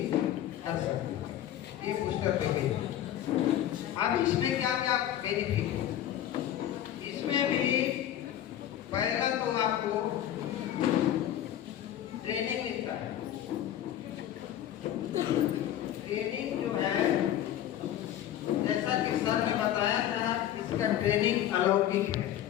कर सकते हैं। ये बूस्टर पैकेज। अब इसमें क्या क्या बेनिफिट है? इसमें भी पहला तो आपको ट्रेनिंग मिलता है। ट्रेनिंग जो है जैसा कि सर ने बताया था, इसका ट्रेनिंग अलौकिक है,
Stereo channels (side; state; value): right; quieter; 11.6 dB